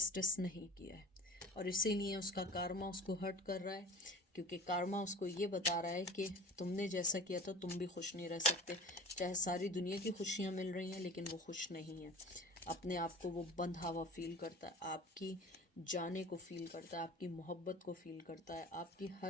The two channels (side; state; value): both; normal; correlation 0.39